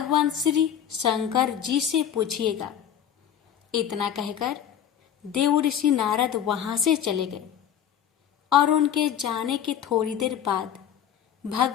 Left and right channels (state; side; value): quieter; right; 9.5 dB